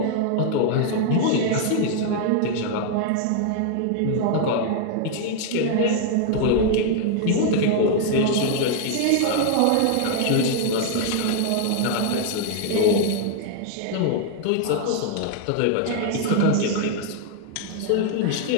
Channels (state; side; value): different; both; correlation 0.00